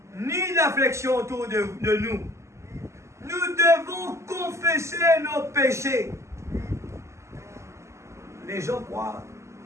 ni d'affliction autour de nous. Nous devons confesser nos péchés. Les gens croient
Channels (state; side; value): late; left; 0.13 ms